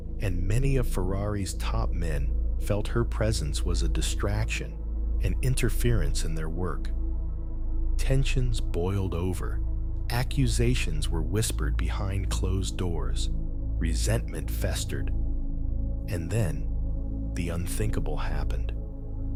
and many of Ferrari's top men felt her presence was a distraction and interference in their work. Tensions boiled over. Accusations were whispered behind closed doors. Resentment festered. And then, the unthinkable happened.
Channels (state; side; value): identical; both; correlation 1.00